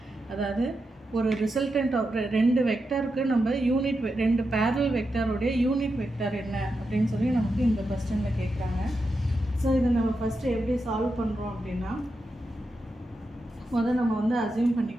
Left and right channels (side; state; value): both; normal; correlation 0.87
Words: அதாவது ஒரு ரிசல்டன்ட் ஆஃப் ரெண்டு வெக்டாருக்கு நம்ம ரெண்டு பேரல் வெக்டாரோடைய யூனிட் வெக்டார் என்ன அப்படின்னு சொல்லி நமக்கு இந்த கொஸ்டினில் கேட்குறாங்க. ஸோ இதை நம்ம ஃபஸ்ட்டு எப்படி சால்வ் பண்ணுறோம் அப்படின்னா நம்ம வந்து அசியூம்